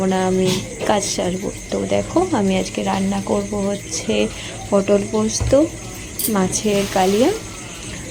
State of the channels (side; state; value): both; identical; correlation 1.00